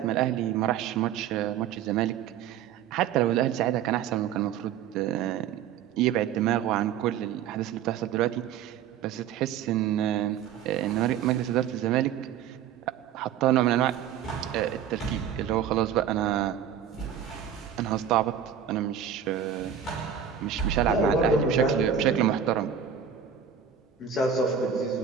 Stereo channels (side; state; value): left; quieter; 8.6 dB